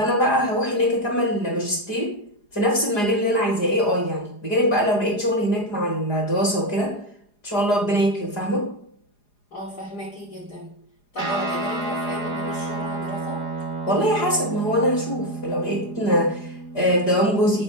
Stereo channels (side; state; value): right; late; 4.9 ms